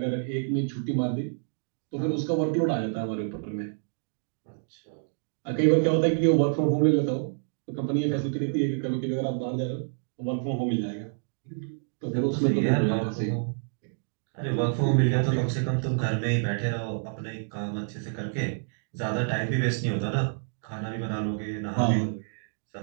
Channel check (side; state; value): left; silent; digital silence